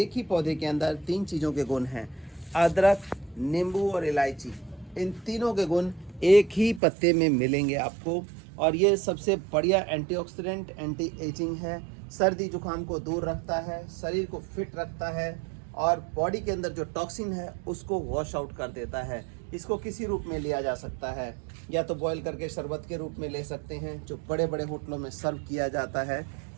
ही पौधे के अंदर 3 चीज़ों के गुण हैं, अदरक, नींबू और इलायची। इन तीनों के गुण एक ही पत्ते में मिलेंगे आपको। और ये सबसे बढ़िया एंटीऑक्सीडेंट, एंटी एजिंग है, सर्दी जुकाम को दूर रखता है, शरीर को फिट रखता है और बॉडी के अंदर जो टॉक्सिन है उसको वॉश आउट कर देता है। इसको किसी रूप में लिया जा सकता है, या तो बॉईल करके शरबत के रूप में ले सकते हैं, जो बड़े बड़े होटलों में सर्व किया जाता है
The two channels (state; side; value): drops out; left; at 6.8 s